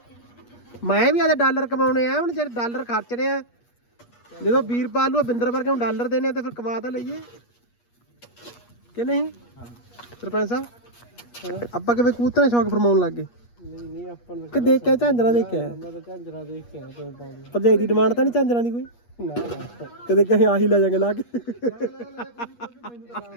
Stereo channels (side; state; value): right; late; 8.4 ms